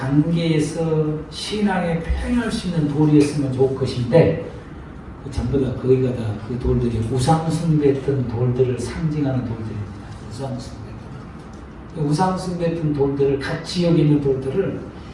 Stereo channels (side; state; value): both; identical; correlation 1.00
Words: 신앙에 표현할 수 있는 돌이었으면 좋을 것인데, 전부 다 거기가 다 그 돌들이 우상숭배했던 돌들을 상징하는 돌들입니다. 우상숭배했던 돌들을, 같이 여기 있는 돌들을